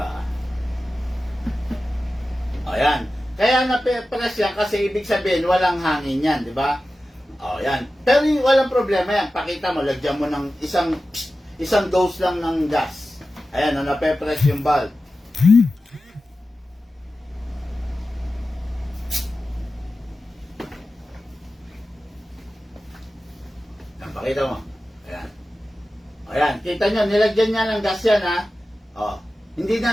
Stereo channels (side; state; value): both; normal; correlation 0.94